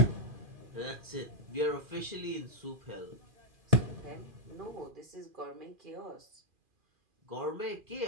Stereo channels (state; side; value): late; left; 2.4 ms